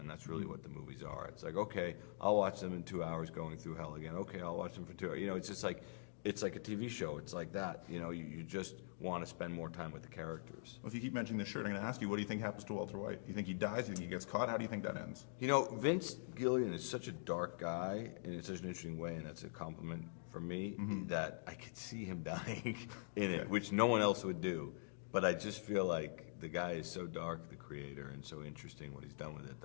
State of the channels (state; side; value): silent; right; digital silence